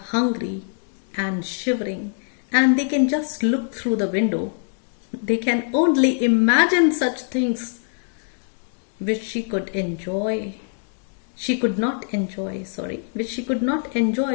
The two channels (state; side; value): silent; right; 63 dB below the other